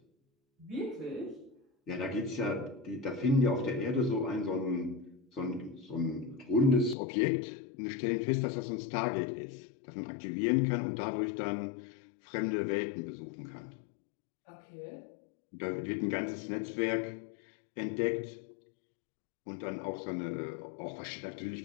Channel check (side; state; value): right; drops out; at 7.0 s